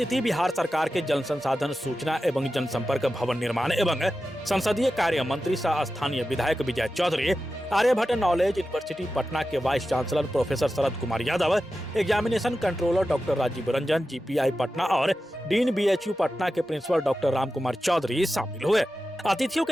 बिहार सरकार के जल संसाधन, सूचना एवं जनसंपर्क, भवन निर्माण एवं संसदीय कार्य मंत्री सह स्थानीय विधायक विजय चौधरी, आर्यभट्ट नॉलेज यूनिवर्सिटी पटना के vice chancellor professor Sharad Kumar Yadav, examination controller doctor Rajiv Ranjan, GPI Patna और डीन बीएचयू पटना के प्रिंसिपल डॉक्टर राम कुमार चौधरी शामिल हुए। अतिथियों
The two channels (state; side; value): normal; both; correlation 0.92